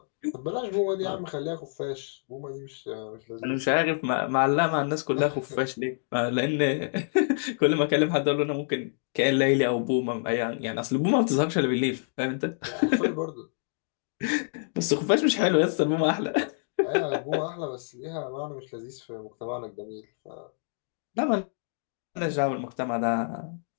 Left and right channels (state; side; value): silent; right; digital silence